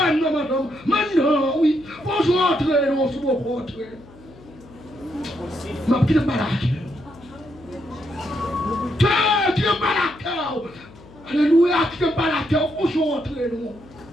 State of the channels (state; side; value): noise; left; hum, 22 dB below the sound